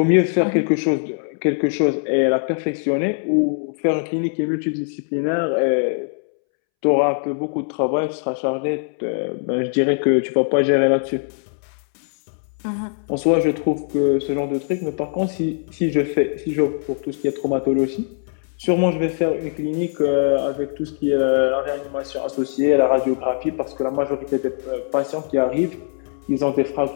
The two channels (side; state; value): right; silent; 65 dB below the other